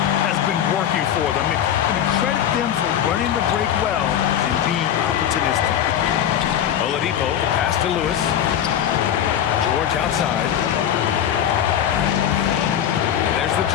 has been working for them. And credit them for running the break well and being opportunistic. Oladipo, the pass to Lewis. George outside. There's the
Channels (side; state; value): right; quieter; 10.0 dB